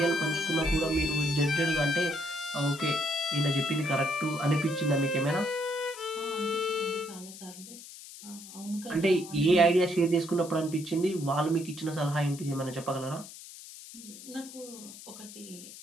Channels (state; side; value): noise; left; hiss, 15 dB below the sound